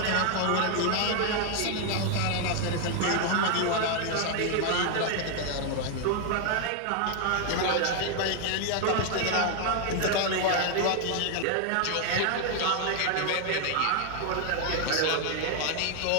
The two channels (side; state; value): both; different; correlation 0.00